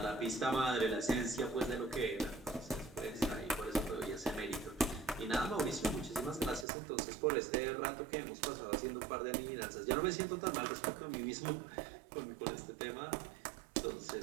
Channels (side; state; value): left; drops out; at 6.7 s